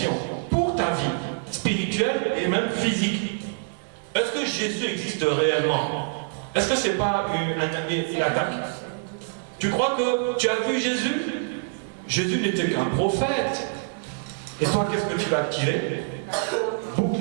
pour ta vie spirituelle et même physique. Est-ce que Jésus existe réellement? Est-ce que c'est pas une attaque? Tu crois que tu as vu Jésus? Jésus n'était qu'un prophète. Et toi, qu'est-ce que tu vas tirer?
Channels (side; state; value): left; silent; digital silence